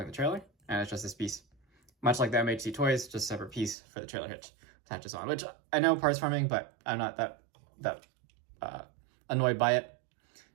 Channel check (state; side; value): drops out; left; at 3.8 s